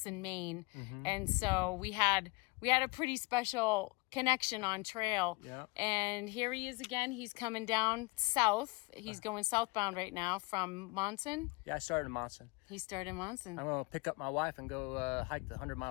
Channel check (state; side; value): quieter; right; 26.7 dB